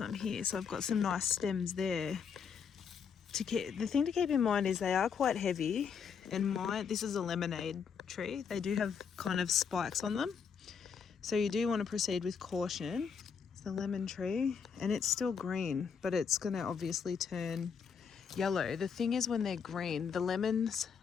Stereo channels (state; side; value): quieter; right; 6.6 dB